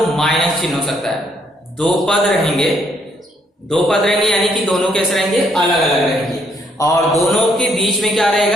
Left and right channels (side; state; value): both; normal; correlation 0.70